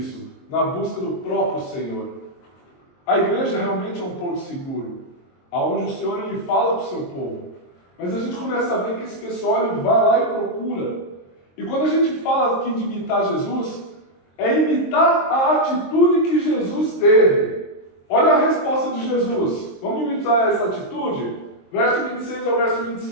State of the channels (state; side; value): late; right; 23 ms